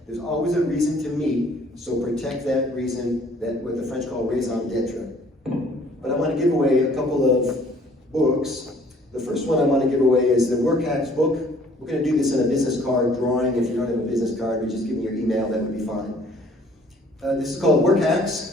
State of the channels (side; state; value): both; normal; correlation 0.57